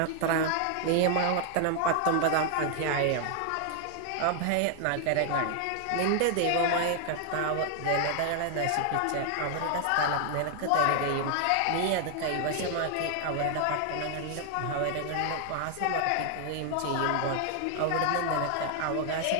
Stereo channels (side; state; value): both; different; correlation 0.00